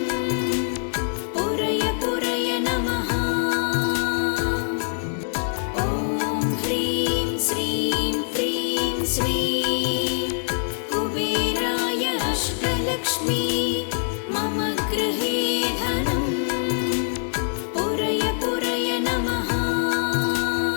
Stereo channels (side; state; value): right; silent; 62 dB below the other